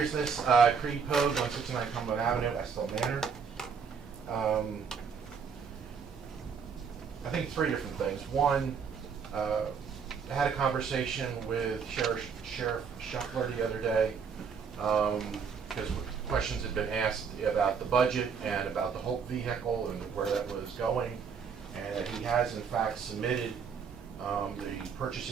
Creed Pogue, 169 Cumberland Avenue, Estill Manor. I think three different things. One, I had a conversation with Sheriff Shuffler the other day, because questions had been asked about the budget and about the Hope vehicle and where that was going, and that he has in fact submitted the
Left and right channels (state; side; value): quieter; left; 6.2 dB